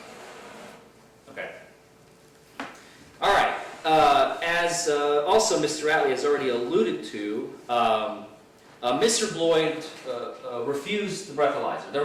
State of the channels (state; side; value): identical; both; correlation 1.00